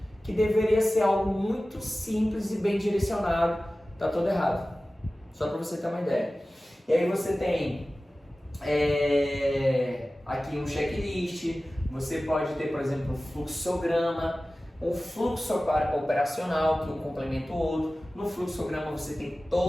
que deveria ser algo muito simples e bem direcionado, tá todo errado. Só para você ter uma ideia. E aí você tem aqui um checklist, você pode ter, por exemplo, um fluxograma, um fluxo operacional que um complementa o outro. No fluxograma você tem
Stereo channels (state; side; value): normal; both; correlation 0.96